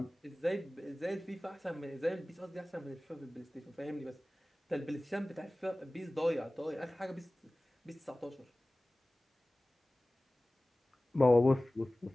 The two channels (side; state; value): both; normal; correlation 0.98